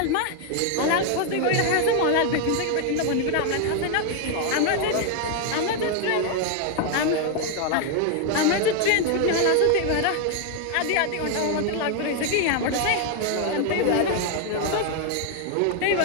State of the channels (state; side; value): different; both; correlation 0.01